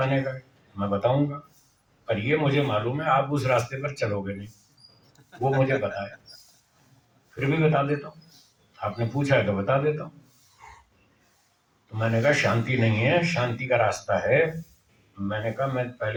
का है, मैं बताऊंगा। पर ये मुझे मालूम है आप उस रास्ते पर चलोगे नहीं, वो मुझे पता है, फिर भी बता देता हूँ, आपने पूछा है तो बता देता हूँ। तो मैंने कहा शांति नहीं है, शांति का रास्ता है। मैंने कहा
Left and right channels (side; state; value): both; identical; correlation 1.00